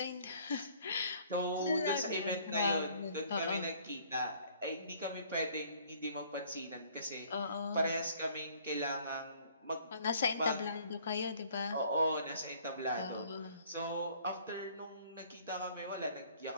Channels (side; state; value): both; inverted; correlation -0.57